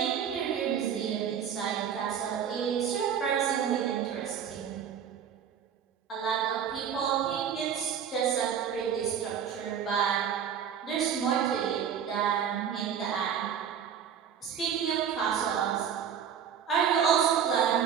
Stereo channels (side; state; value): left; quieter; 8.2 dB